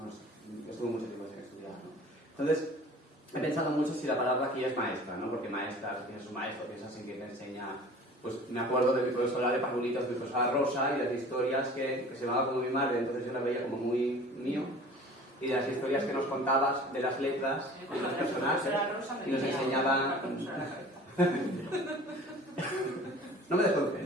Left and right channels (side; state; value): both; normal; correlation 0.44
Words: sé, estuve mucho tiempo sin estudiar, ¿no? Entonces, he pensado mucho si la palabra aquí es maestra, ¿no? Porque maestra, tienes un maestro, piensas en quien te enseña pues me acuerdo de mi profesora de parvulitos, mi profesora Rosa, y las historias que se llamaba como mi madre, entonces yo la veía como muy mío, y de las historias que nos contabas de las letras de los personajes, y nos enseñaban... No me